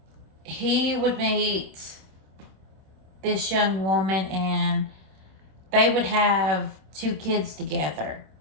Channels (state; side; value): late; left; 26 ms